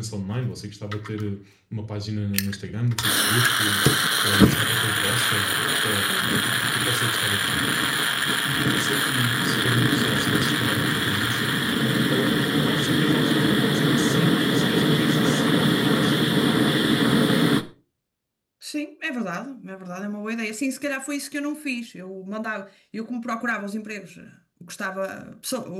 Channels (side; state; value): both; identical; correlation 1.00